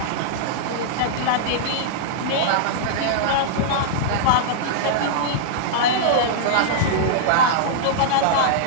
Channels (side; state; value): both; different; correlation -0.02